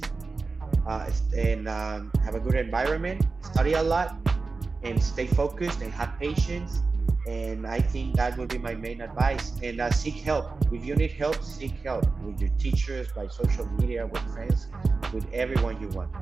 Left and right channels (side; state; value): left; quieter; 4.1 dB